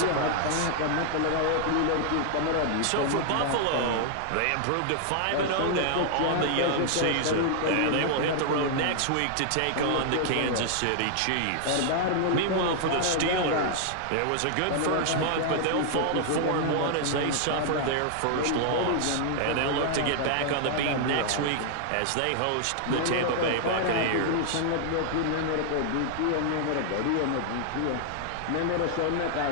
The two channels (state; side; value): different; both; correlation 0.00